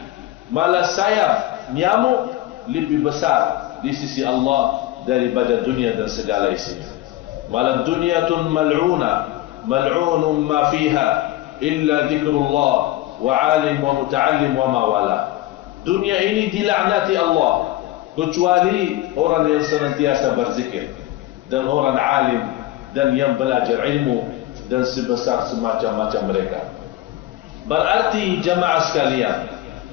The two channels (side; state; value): right; quieter; 15.8 dB